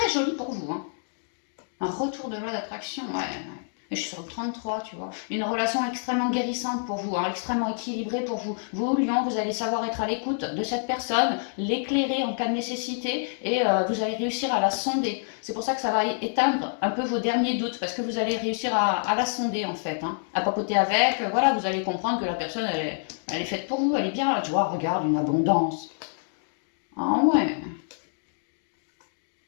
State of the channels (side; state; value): right; silent; digital silence